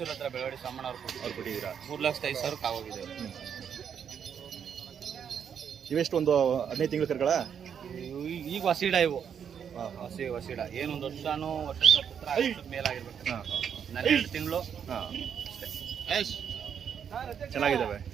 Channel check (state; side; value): quieter; left; 7.9 dB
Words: ಹತ್ರ ಬೆಳವಾಡಿ ಸೋಮಣ್ಣ ಅವ್ರು ಕೊಟ್ಟಿದ್ದೀರಾ? 3,05,000 ಆಗೋಗಿದೆ. ಇವೆಷ್ಟು ಒಂದು 15 ತಿಂಗಳು ಕರುಗಳ? ಈಗ ವಸೀಡ ಇವು. ವಸೀಡ ಏನೊಂದು ವರ್ಷನೂ ಮೇಲಾಗಿರ್ಬೇಕು. 12 ತಿಂಗಳು ಚೆನ್ನಾಗಿದ್ದಾವೆ.